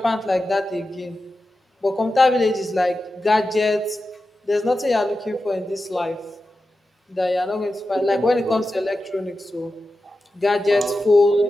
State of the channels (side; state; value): both; normal; correlation 0.92